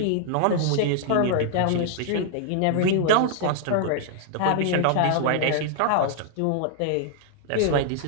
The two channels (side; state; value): both; different; correlation -0.01